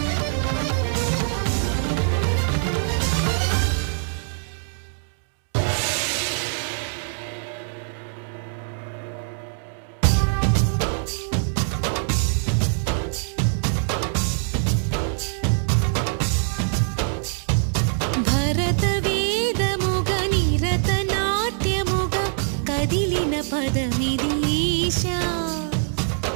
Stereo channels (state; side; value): silent; left; 61 dB below the other